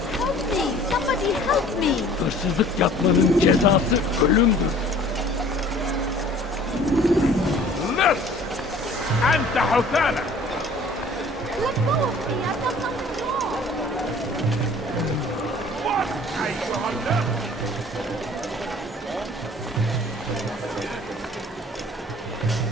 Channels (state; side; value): normal; both; correlation 0.50